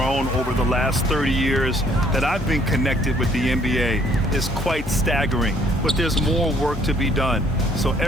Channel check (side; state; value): both; normal; correlation 0.63